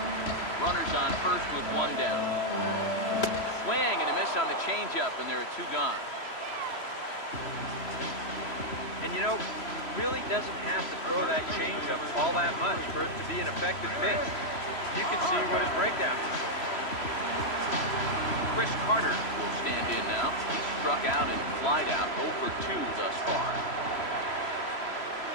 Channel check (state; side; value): late; right; 3.0 ms